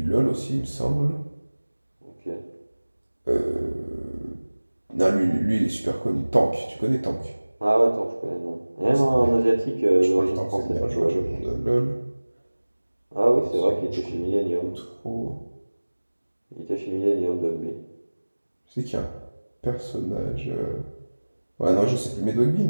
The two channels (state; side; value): inverted; both; correlation -1.00